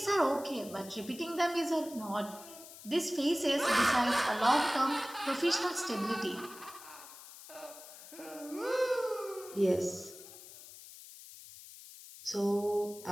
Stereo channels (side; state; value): left; noise; hiss, 16 dB below the sound